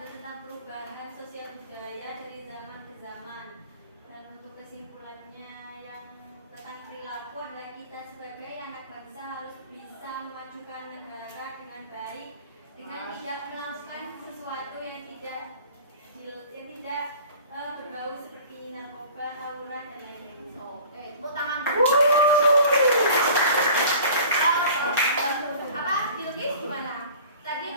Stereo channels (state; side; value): inverted; both; correlation -0.44